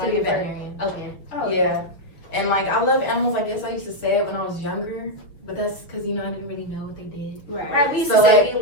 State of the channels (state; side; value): late; right; 6.2 ms